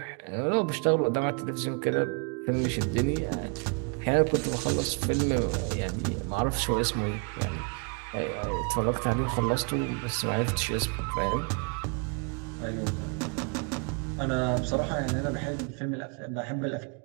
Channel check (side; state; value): left; quieter; 35.8 dB